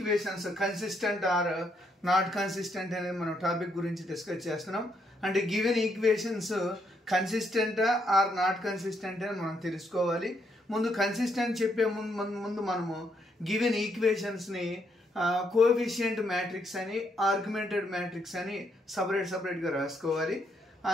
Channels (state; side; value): normal; both; correlation 0.75